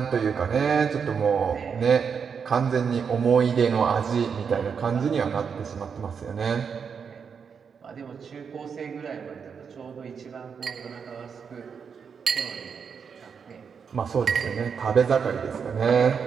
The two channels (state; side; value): quieter; left; 6.4 dB